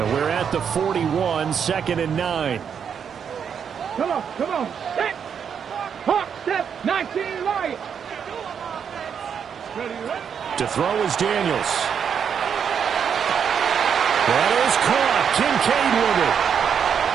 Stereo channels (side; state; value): left; quieter; 7.5 dB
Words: we're at the 41, 2nd and 9. Come on. Step. Hawk, step. 19 right. To throw is Daniels. That is caught. Kincaid with it.